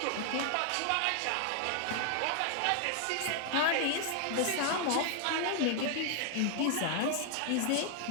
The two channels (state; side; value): different; both; correlation 0.00